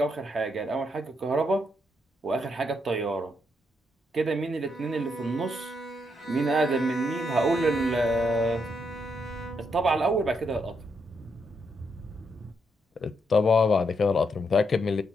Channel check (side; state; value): both; normal; correlation 0.79